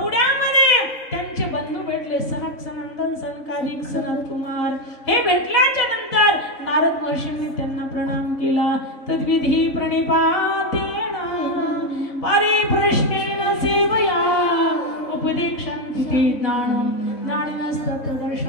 त्यांचे बंधू भेटले, सनक सनंदन सनकादिक सनत कुमार. हे भेटल्याच्या नंतर नारद महर्षींनी त्यांना प्रणाम केला. तद्विधी प्रणिपातेन परिप्रश्नेन सेवया उपदेक्षन्ति ते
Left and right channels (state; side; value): late; right; 4.1 ms